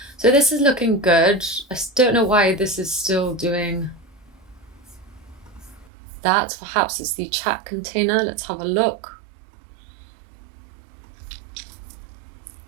So this is looking good. I don't know why this is still doing that. Perhaps it's the chat container. Let's have a look.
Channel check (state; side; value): drops out; left; at 5.9 s